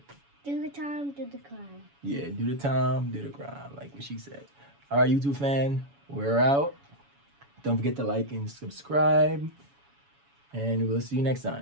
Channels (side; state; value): left; late; 7.1 ms